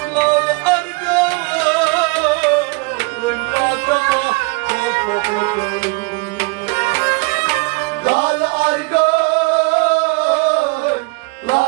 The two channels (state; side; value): quieter; left; 28.7 dB